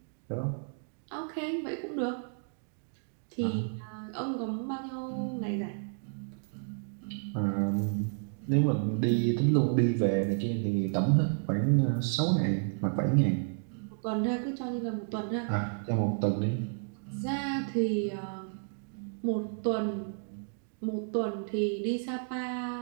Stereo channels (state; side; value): silent; left; 57 dB below the other